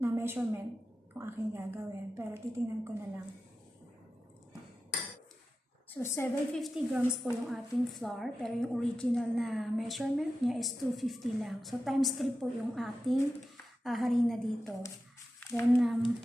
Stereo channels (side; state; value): both; normal; correlation 0.93